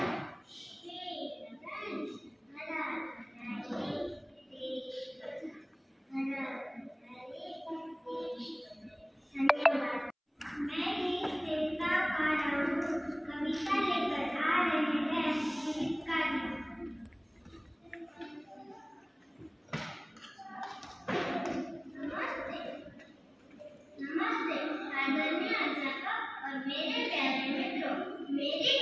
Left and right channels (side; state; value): both; identical; correlation 1.00